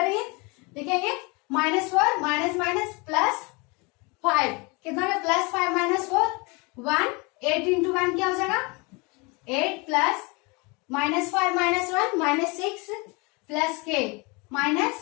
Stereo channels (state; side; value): quieter; right; 28.3 dB